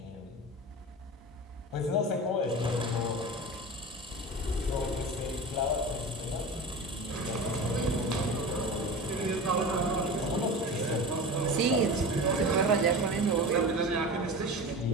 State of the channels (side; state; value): both; normal; correlation 0.31